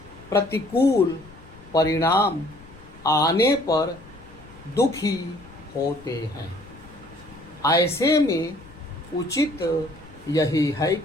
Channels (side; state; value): left; noise; rumble, 22 dB below the sound